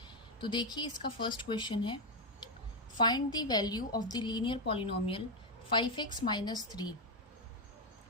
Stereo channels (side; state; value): both; normal; correlation 0.04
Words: तो देखिए इसका फर्स्ट क्वेश्चन है, find the value of the linear polynomial 5x minus 3